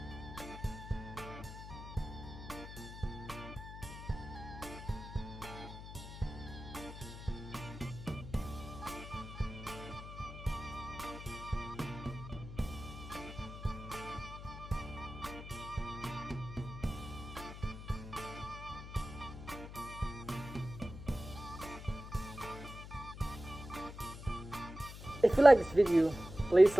If you like this video, please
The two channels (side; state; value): left; noise; hum, 11 dB below the sound